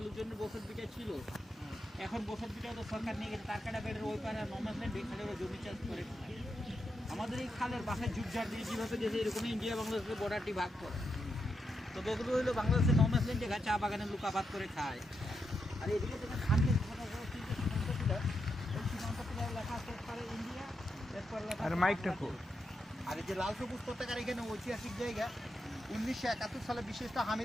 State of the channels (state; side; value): normal; both; correlation 0.85